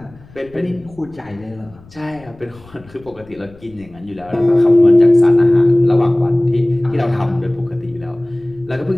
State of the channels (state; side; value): noise; left; rumble, 24 dB below the sound